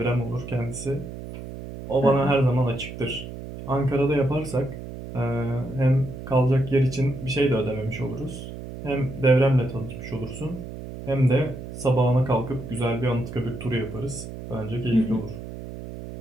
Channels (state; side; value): noise; right; hum, 11 dB below the sound